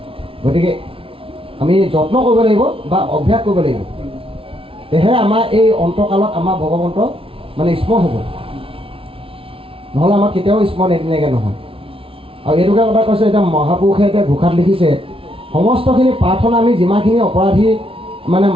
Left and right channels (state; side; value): late; left; 0.26 ms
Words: গতিকে আমি যত্ন কৰিব লাগিব বা অভ্যাস কৰিব লাগিব, তেহে আমাৰ এই অন্তকালত আমাৰ ভগৱন্ত মানে স্মৰণ হ'ব, নহ'লে আমাৰ কেতিয়াও স্মৰণ এদিনাকৈ নহয়। আৰু এইটোকে কথা কৈছে, এতিয়া মহাপুৰুষে এতিয়া ঘোষাত লিখিছে সমস্তখিনি প্ৰাৰ্থনা আমি যিমানখিনি অপৰাধী মানে